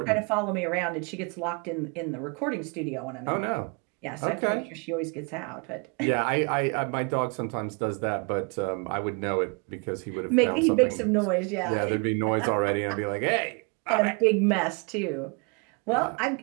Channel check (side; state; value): left; quieter; 33.8 dB